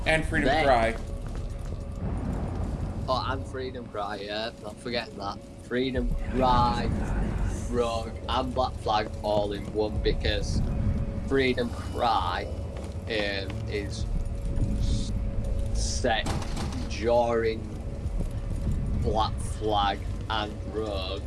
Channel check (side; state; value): both; identical; correlation 1.00